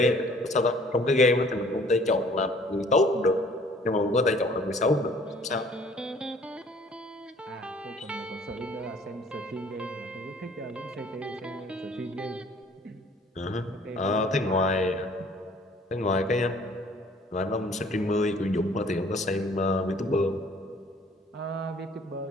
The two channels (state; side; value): normal; both; correlation 0.56